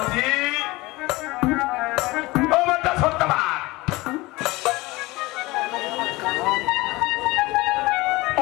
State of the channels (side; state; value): right; quieter; 21.4 dB